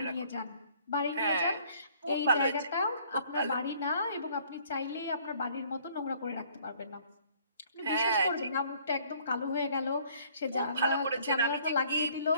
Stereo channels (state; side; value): inverted; both; correlation -0.59